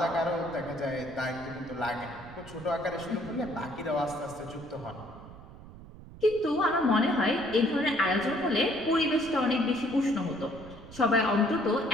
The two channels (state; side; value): noise; right; rumble, 17 dB below the sound